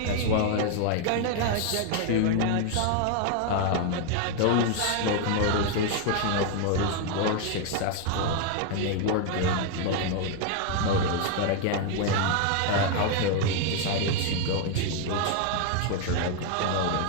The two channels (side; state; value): both; different; correlation 0.01